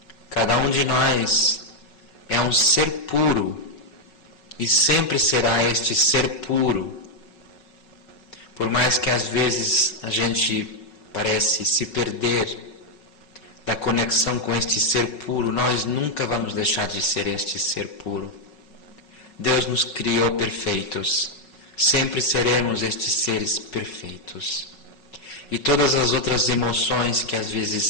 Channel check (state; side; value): late; right; 5.4 ms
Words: Cada um de nós é um ser puro e sempre será este ser puro. Por mais que às vezes a gente parece se perder da conexão com este ser puro, nós nunca vamos deixar de ser este ser puro. Deus nos criou perfeitos, sempre seremos estes seres perfeitos. E todas as outras emoções que às vezes